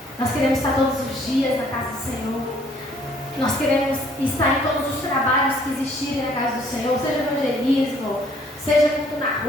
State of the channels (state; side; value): normal; both; correlation 0.61